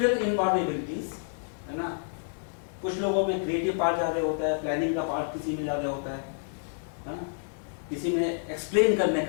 इनवॉल्वेबिलिटीज है ना, कुछ लोगों में क्रिएटिव पार्ट ज्यादा होता है, प्लानिंग का पार्ट किसी में ज्यादा होता है ना, किसी में एक्सप्लेन करने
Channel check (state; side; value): silent; right; digital silence